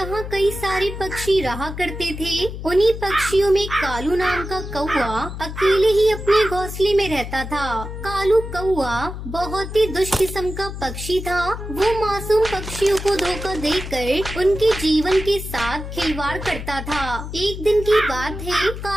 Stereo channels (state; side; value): noise; left; hum, 8 dB below the sound